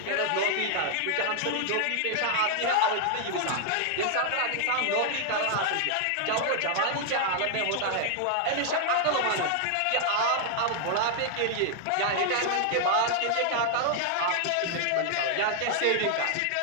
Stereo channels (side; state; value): both; different; correlation 0.00